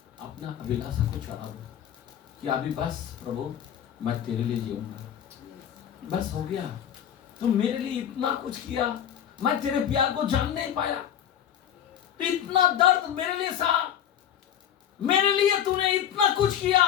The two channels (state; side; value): quieter; right; 9.8 dB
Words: अपना अभिलाषा को चढ़ाओ कि अभी बस प्रभु मैं तेरे लिए जीऊंगा, बस हो गया। तुम मेरे लिए इतना कुछ किया, मैं तेरे प्यार को जान नहीं पाया, इतना दर्द मेरे लिए सहा, मेरे लिए तूने इतना कुछ किया,